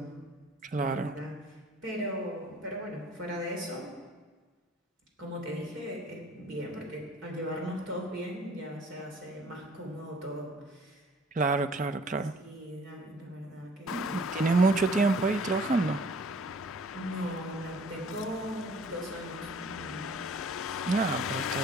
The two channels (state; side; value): normal; both; correlation 0.54